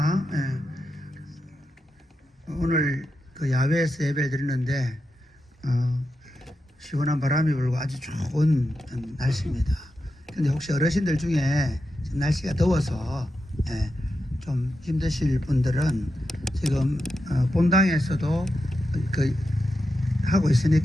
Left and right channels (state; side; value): normal; both; correlation 0.88